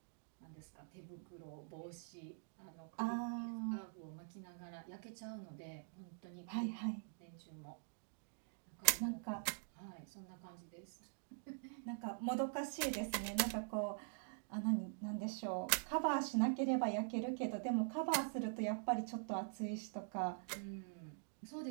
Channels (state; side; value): silent; left; digital silence